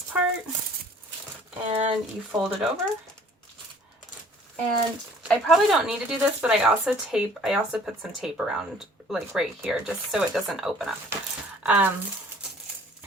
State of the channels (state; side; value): normal; both; correlation 0.54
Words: part and you fold it over. And I probably don't need to do this, but I also put some tape around, like right here, just so it doesn't open up.